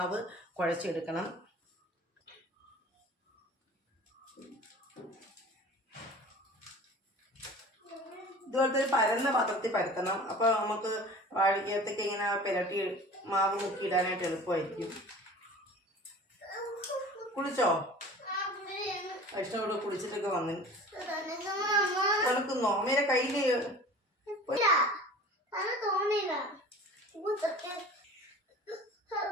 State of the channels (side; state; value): both; normal; correlation 0.41